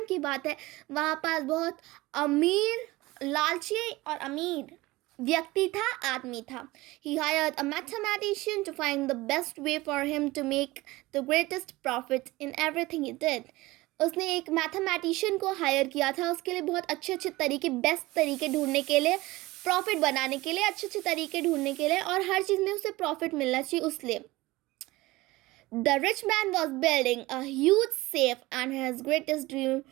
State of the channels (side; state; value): left; quieter; 20.0 dB